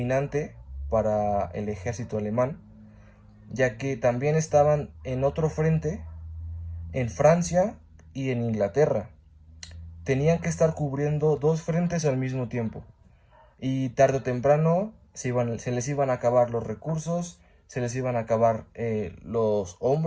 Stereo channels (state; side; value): identical; both; correlation 1.00